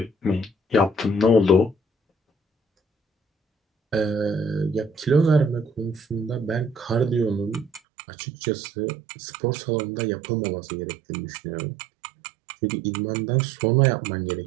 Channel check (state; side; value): drops out; left; at 7.8 s